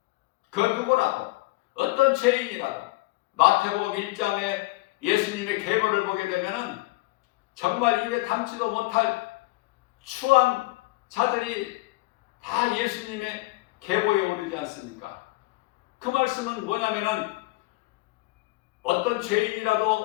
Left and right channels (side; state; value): right; quieter; 21.4 dB